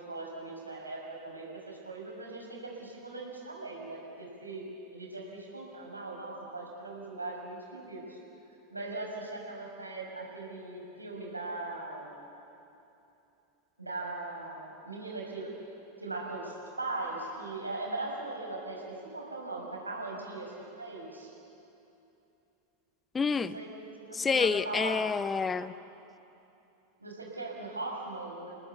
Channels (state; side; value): normal; both; correlation 0.26